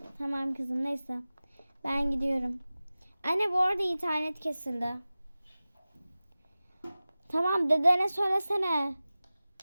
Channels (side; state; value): both; inverted; correlation -0.97